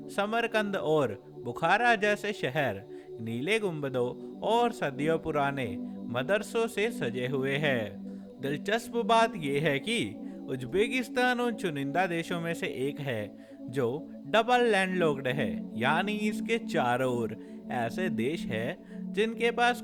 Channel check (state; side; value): identical; both; correlation 1.00